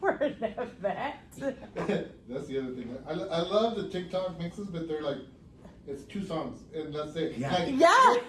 an event. That's the other thing. I love the TikTok mixes, but they're like, it's 2 songs and that's it. Yeah. Like, Yeah.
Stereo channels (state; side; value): identical; both; correlation 1.00